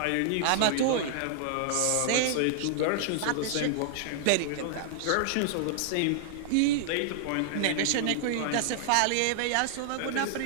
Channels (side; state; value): both; different; correlation -0.01